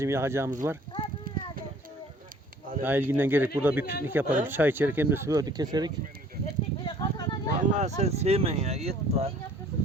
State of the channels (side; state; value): both; normal; correlation 0.54